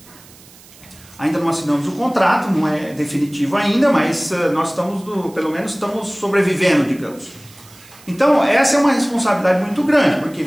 Ainda não assinamos o contrato, não é definitivo ainda, mas nós pelo menos estamos sobrevivendo, digamos. Então, essa é uma responsabilidade muito grande, porque,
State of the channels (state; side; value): noise; right; hiss, 23 dB below the sound